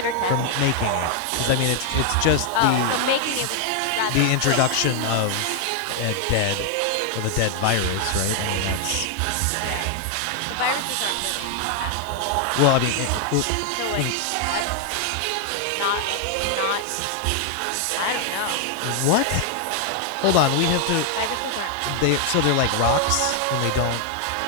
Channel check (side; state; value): both; different; correlation 0.00